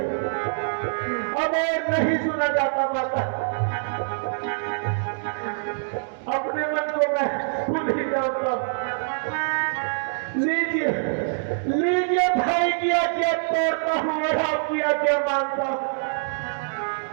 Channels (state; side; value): silent; left; digital silence